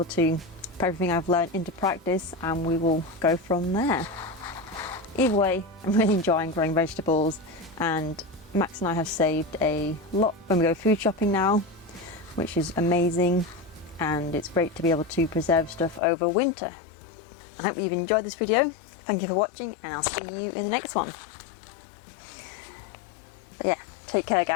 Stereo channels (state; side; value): drops out; right; at 16.0 s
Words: to put everything I've learned into practice and we will go from there. Either way, I'm really enjoying growing vegetables, and Max and I have saved a lot when we go food shopping now, which is amazing. And it's great to be able to preserve stuff over winter. I hope you've enjoyed this video. Thank you for watching, and I'll see you in the next one. But yeah, take care